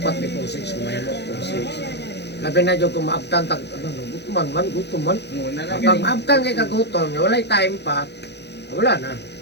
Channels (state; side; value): late; right; 0.49 ms